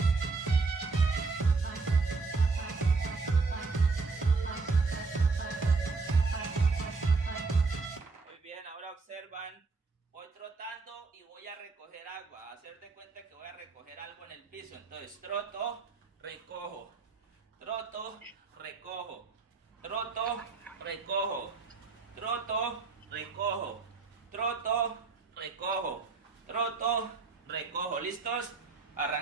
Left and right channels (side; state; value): left; quieter; 4.3 dB